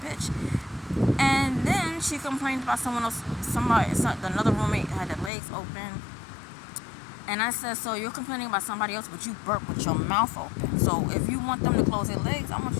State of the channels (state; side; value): drops out; right; at 5.3 s